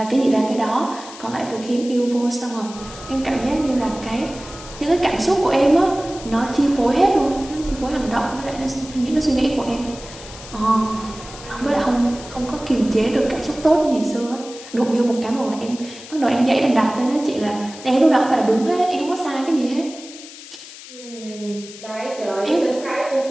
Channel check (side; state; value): left; noise; hiss, 16 dB below the sound